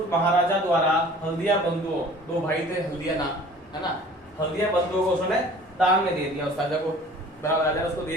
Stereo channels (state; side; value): normal; both; correlation 0.48